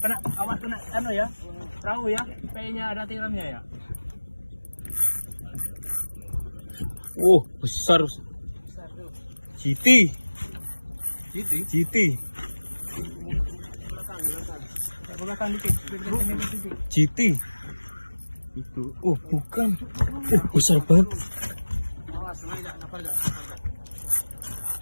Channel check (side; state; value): both; inverted; correlation -1.00